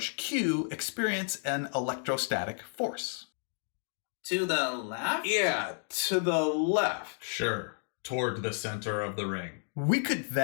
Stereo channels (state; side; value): silent; right; 57 dB below the other